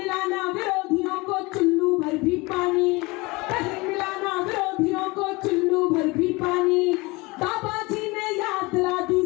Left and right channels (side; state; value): right; quieter; 24.3 dB